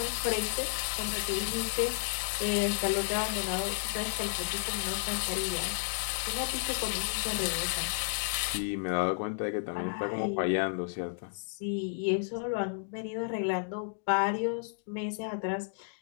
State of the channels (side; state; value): right; silent; digital silence